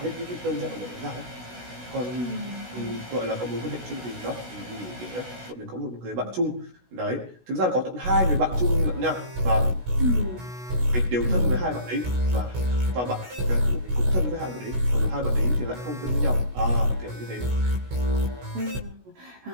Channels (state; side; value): late; left; 16 ms